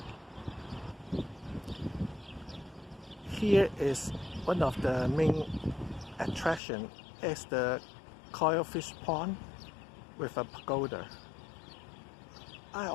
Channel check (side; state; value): right; drops out; at 6.6 s